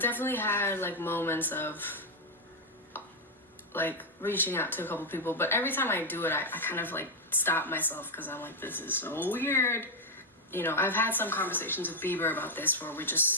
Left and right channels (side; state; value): both; normal; correlation 0.02